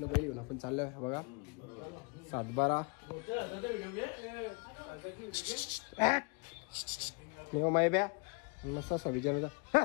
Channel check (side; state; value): right; quieter; 31.9 dB